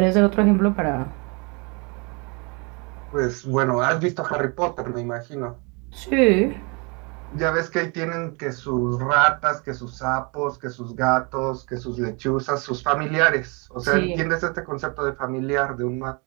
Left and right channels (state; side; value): quieter; left; 31.4 dB